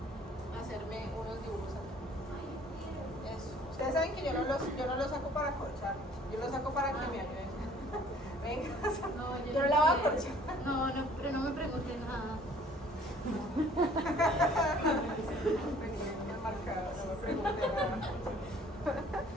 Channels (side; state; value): both; normal; correlation 0.55